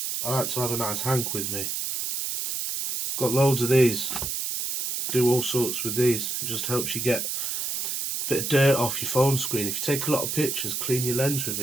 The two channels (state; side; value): noise; right; hiss, 2 dB below the sound